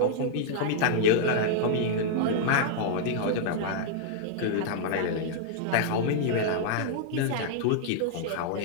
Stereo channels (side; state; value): both; different; correlation -0.01